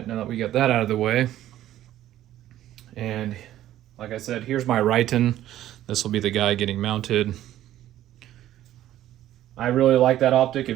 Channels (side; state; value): left; quieter; 13.0 dB